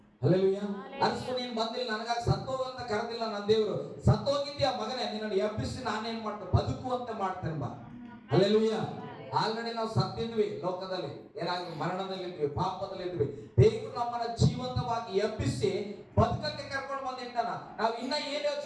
ಹಲ್ಲೆಲೂಯಾ. ಅಷ್ಟು ನೀನ್ ಬಂದಿಲ್ಲ, ನನಗಾಗಿ ಸತ್ತೋಗಂತ ಕರೆದಿಲ್ಲ ನನ್ನ ದೇವರು. ಸತ್ತೋಗಿದ್ಯಾ ಮಗನೇ, ನಿನ್ನನ್ನು ಎಬ್ಬಿಸಿ ನಾನೇನ್ ಮಾಡ್ತೇನೆ, ಬದುಕುವಂತೆ ಮಾಡ್ತೇನೆ ಬಾ. ಹಲ್ಲೆಲೂಯಾ. ಆಲ್ರೆಡಿ ನಾವು ಸತ್ತಿದ್ವಿ, ಲೋಕದಲ್ಲಿ ಏನಾಗಿ ಮರಣದಲ್ಲಿದ್ವಿ, ಪಾಪದಲ್ಲಿದ್ವಿ. ದೇವರು ನಮ್ಮನ್ನ ಜೀವಂತವಾಗಿ ಎಬ್ಬಿಸಿ ಬದುಕಕ್ಕೆ ಕರ್ಕೊಂಡು ಬಂದಿಟ್ಟಾನ. ನಾವು ಇನ್ನ ಏನ್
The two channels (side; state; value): both; identical; correlation 1.00